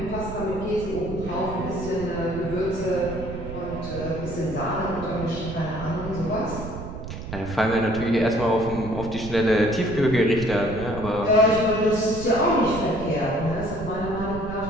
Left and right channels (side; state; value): right; noise; rumble, 9 dB below the sound